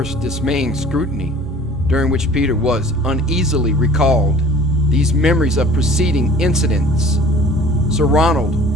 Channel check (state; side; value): normal; both; correlation 0.48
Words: dismaying scrutiny, during which Peter was uneasily recalled these memories of preceding incidents, Sir